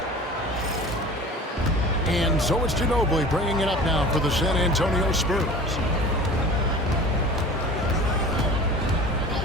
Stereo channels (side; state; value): both; normal; correlation 0.40